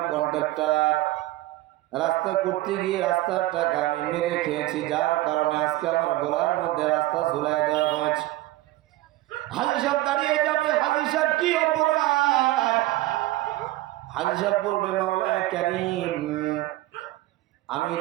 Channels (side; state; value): left; quieter; 17.2 dB